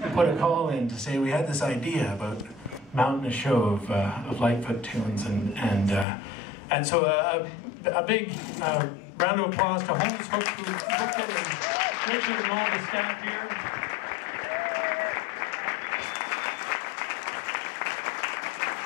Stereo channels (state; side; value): drops out; right; at 6.1 s